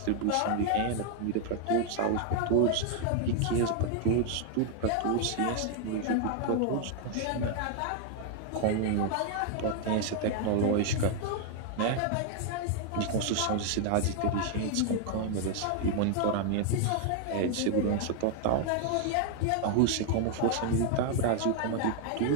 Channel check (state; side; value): different; both; correlation 0.00